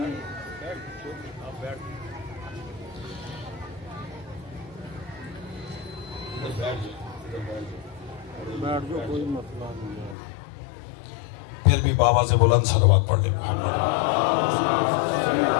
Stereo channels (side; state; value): right; drops out; at 10.2 s